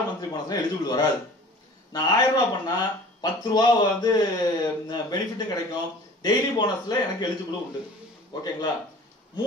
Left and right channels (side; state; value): both; normal; correlation 0.45